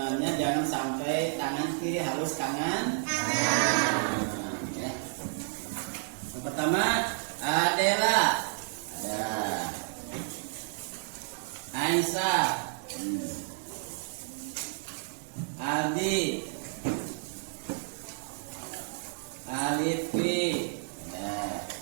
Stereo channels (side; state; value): left; silent; 57 dB below the other